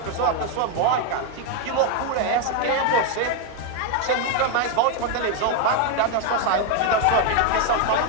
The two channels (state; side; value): different; both; correlation 0.01